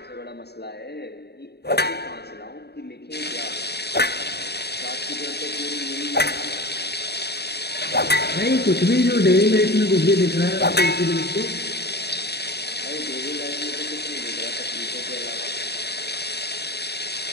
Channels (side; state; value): right; late; 0.48 ms